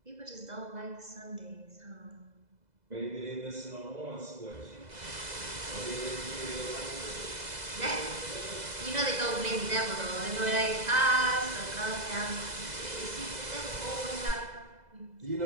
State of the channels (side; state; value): left; late; 2.0 ms